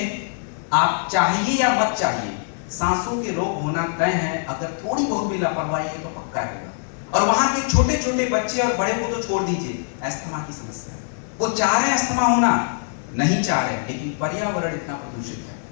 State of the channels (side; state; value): right; silent; 59 dB below the other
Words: आप चाहिए या मत चाहिए, सांसों के रोग होना तय है। अगर थोड़ी बहुत भी लापरवाही है तो पक्का है। और वहां के छोटे छोटे बच्चे और बड़े को तो छोड़ दीजिए, अस्थमा की समस्या, वो चाह रहे हैं अस्थमा होना, नहीं चाह रहे, लेकिन पर्यावरण इतना प्रदूषित है,